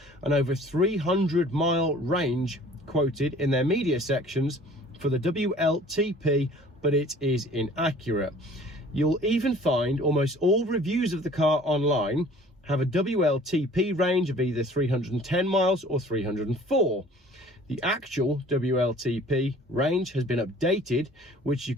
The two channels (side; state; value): both; normal; correlation 0.50